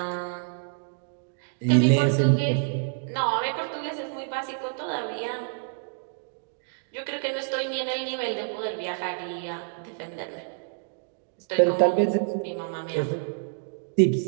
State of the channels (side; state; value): left; silent; digital silence